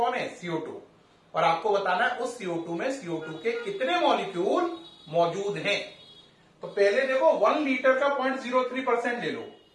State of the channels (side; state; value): both; identical; correlation 1.00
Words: है CO2, और आपको बताना है उस CO2 में CO2 के कितने मॉलिक्यूल मौजूद हैं। तो पहले देखो 1 लीटर का 0.03% ले लो